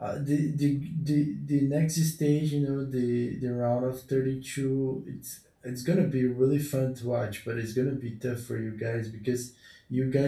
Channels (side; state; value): both; identical; correlation 1.00